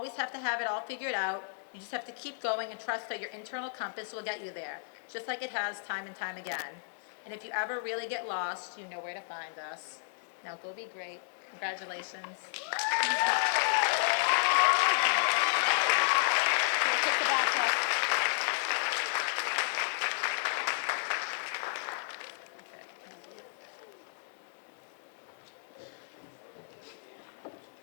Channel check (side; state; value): right; silent; digital silence